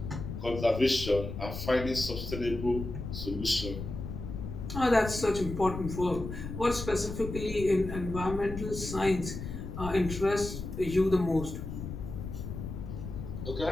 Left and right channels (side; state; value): left; noise; rumble, 7 dB below the sound